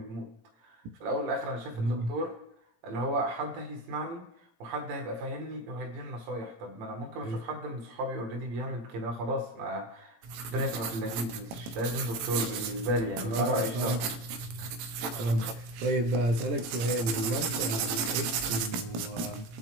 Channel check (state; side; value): late; left; 18 ms